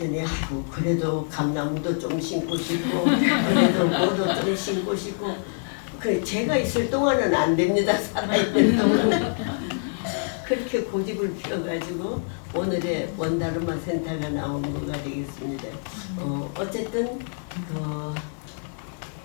아이고 그래도 감나무도 좀 심고 싶고 그래도 뭐도 좀 심고 싶고 그 제가 있을 동안은 안 됩니다. 살아있는 동안은 그렇게 고집을 피워가지고 오늘의 원다르마 센터가 나온 거가 되겠습니다. 어쨌든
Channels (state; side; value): silent; right; digital silence